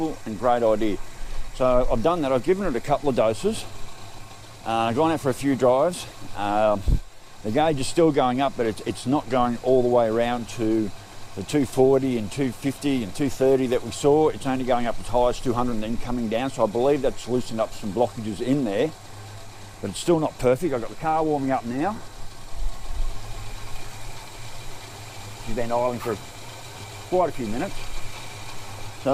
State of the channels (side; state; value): both; identical; correlation 1.00